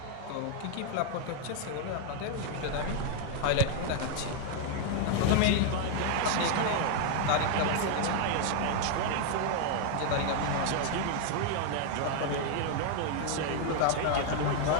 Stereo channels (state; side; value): different; both; correlation 0.00